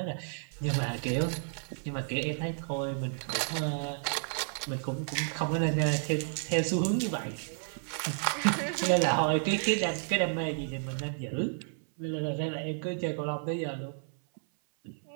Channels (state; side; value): silent; left; 57 dB below the other